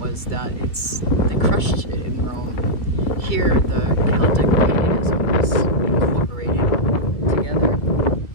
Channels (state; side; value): late; right; 2.3 ms